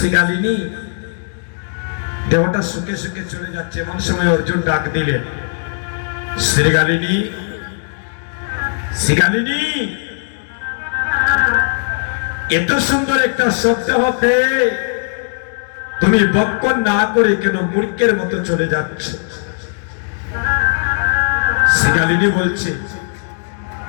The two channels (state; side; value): silent; right; 68 dB below the other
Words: দেহটা সুখে সুখে চলে যাচ্ছে, এমন সময় অর্জুন ডাক দিলেন, শ্রীগালিনী, শ্রীগালিনী, এত সুন্দর একটা শব্দ হতে তুমি ভক্ষণ না করে কেন মূর্খের মতো চলে যাচ্ছ? শ্রীগালিনী বলছে,